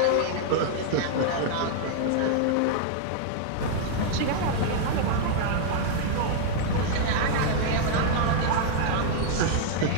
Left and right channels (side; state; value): both; different; correlation -0.01